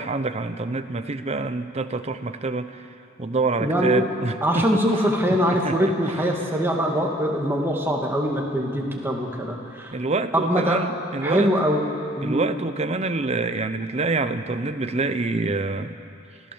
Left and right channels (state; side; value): normal; both; correlation 0.56